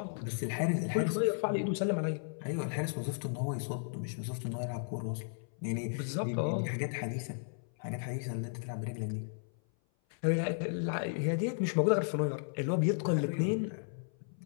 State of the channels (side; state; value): right; silent; 55 dB below the other